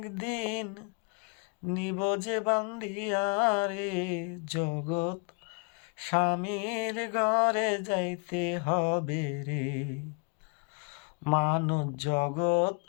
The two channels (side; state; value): right; quieter; 32.5 dB